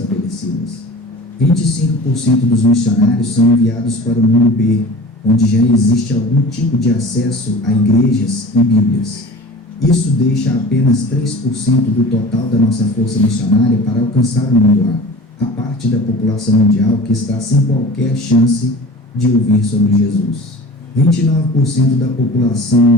25% dos missionários são enviados para o mundo B, onde já existe algum tipo de acesso a igrejas e Bíblias. Isso deixa apenas 3% do total da nossa força missionária para alcançar o mundo A, a parte da população mundial que está sem qualquer chance de ouvir sobre Jesus. 29% da população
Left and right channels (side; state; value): both; normal; correlation 0.39